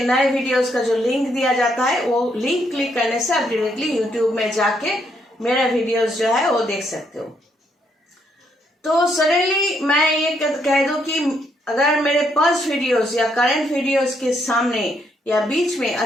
नए वीडियोस का जो लिंक दिया जाता है वो लिंक क्लिक करने से आप डायरेक्टली यूट्यूब में जाके मेरा वीडियोस जो है वो देख सकते हो। तो सडनली मैं ये कह दूं कि अगर मेरे पास्ट वीडियोस या करंट वीडियोस के सामने या बीच में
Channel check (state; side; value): normal; both; correlation 0.74